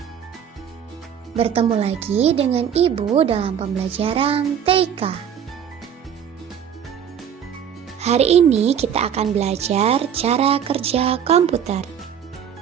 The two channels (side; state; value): left; quieter; 8.5 dB